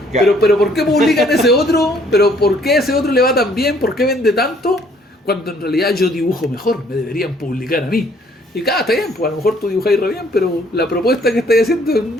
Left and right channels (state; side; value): normal; both; correlation 0.62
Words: Claro. pero ¿por qué publican ese otro? ¿Pero por qué ese otro le va tan bien? ¿Por qué vende tanto? Cuando en realidad yo dibujo mejor, me deberían publicar a mí. Y está bien, pues a lo mejor tú dibujáis re bien, pero la propuesta que estáis haciendo es